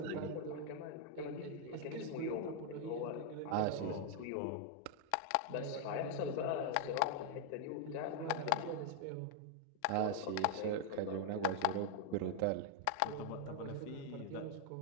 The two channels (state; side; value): different; both; correlation 0.00